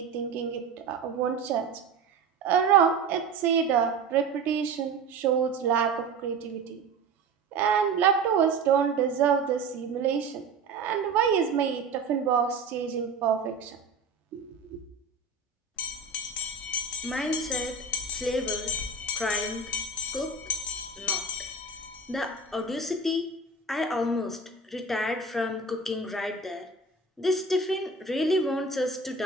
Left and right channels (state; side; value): quieter; left; 4.0 dB